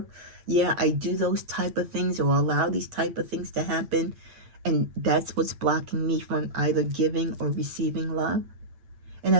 Yeah, I do those type of things, or allow these type of things to happen. And that's what's blocking me from either giving or receiving love. And I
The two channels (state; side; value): late; left; 8.8 ms